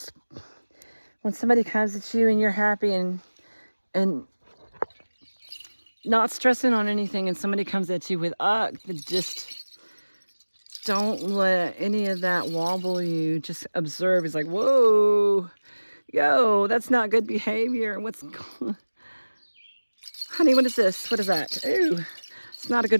when somebody comes at you and you're happy and not stressing on anything, and somebody comes at you with just don't let any of that wobble you. Just observe. It's like, whoa, yo, that's not good behavior. What's going? Honey, what is this? What is that? Ooh, it's not a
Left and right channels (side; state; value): both; inverted; correlation -1.00